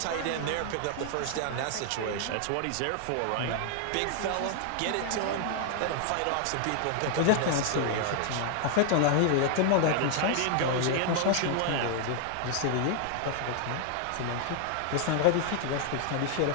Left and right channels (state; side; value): different; both; correlation 0.00